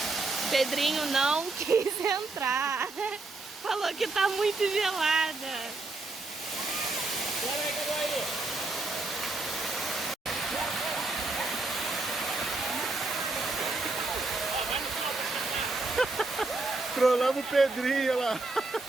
Pedrinho não quis entrar. Falou que tá muito gelada. Bora aí, cadê aí? Trollamos o Pedrinho lá.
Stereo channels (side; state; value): left; quieter; 3.3 dB